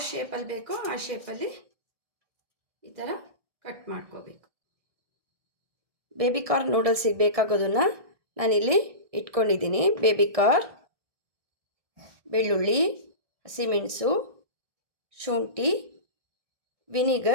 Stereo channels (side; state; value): left; late; 1.6 ms